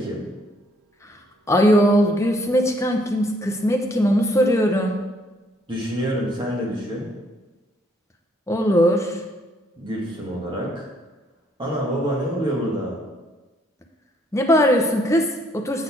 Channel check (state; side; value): normal; both; correlation 0.68